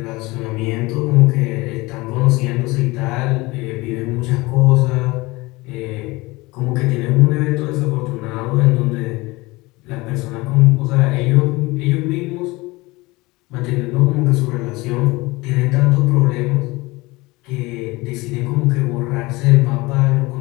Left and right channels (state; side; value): quieter; right; 22.3 dB